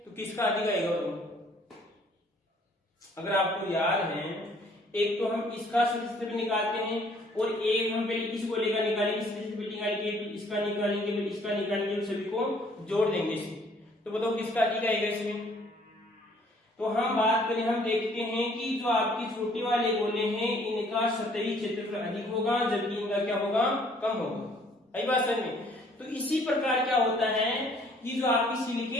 तो किसका अधिक आएगा? अगर आपको याद है, एक तो हम इसका सतही क्षेत्रफल निकालते हैं और एक हम पहले इस गोले का निकालेंगे, सतही क्षेत्रफल निकालेंगे, फिर इसका निकालेंगे, फिर इसका निकालेंगे, सभी को जोड़ देंगे इसे। तो बताओ किसका अधिक आएगा इसमें? तो हम बात करें, हम देखते हैं कि जो आपकी छोटे वाले गोले हैं इनका सतही क्षेत्रफल अधिक होगा, जबकि इनका क्या होगा? कम होगा। आई बात समझ में? तो इसी प्रकार क्या होता है कि जो आपकी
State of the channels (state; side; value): normal; both; correlation 0.60